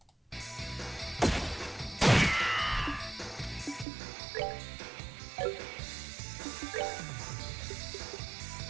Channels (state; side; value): drops out; left; at 3.9 s